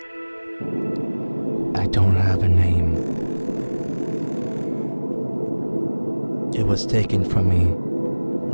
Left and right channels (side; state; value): both; inverted; correlation -1.00